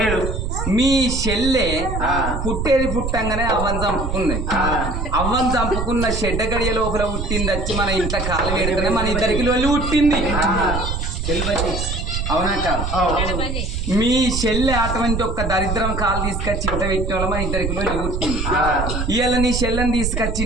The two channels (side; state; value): right; noise; rumble, 2 dB below the sound